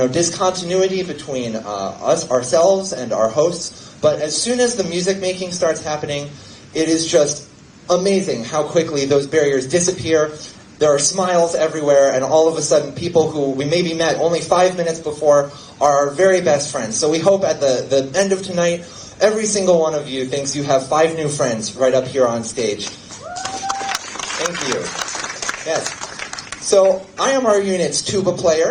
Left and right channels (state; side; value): identical; both; correlation 1.00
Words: between ourselves and our hosts. But as soon as the music making starts happening, it is just amazing how quickly those barriers disappear. There are smiles everywhere, and all of a sudden people who we maybe met only 5 minutes before are our very best friends. So we hope at the end of tonight, every single one of you thinks you have 5 new friends right up here on stage. Thank you. Yes. So I am our unit's tuba